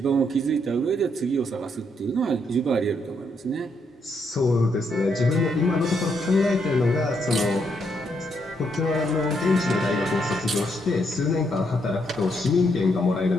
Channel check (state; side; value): normal; both; correlation 0.76